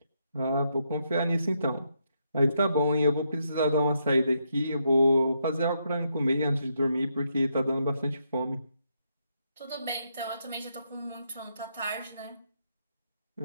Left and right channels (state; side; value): inverted; both; correlation -0.79